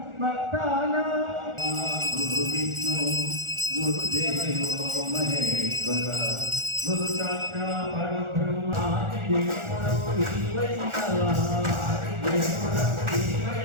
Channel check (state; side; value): late; left; 1.4 ms